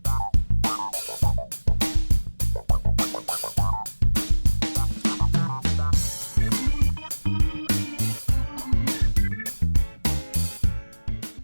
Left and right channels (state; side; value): inverted; both; correlation -1.00